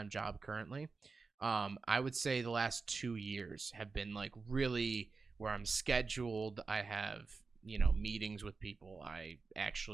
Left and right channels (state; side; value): quieter; left; 4.4 dB